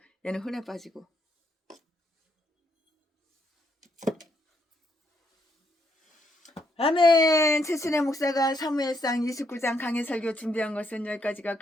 얘는 흔해 빠지고. 아멘. 최순애 목사가 사무엘상 29장 강해 설교 준비한 것은 여기까지가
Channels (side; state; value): both; normal; correlation 0.74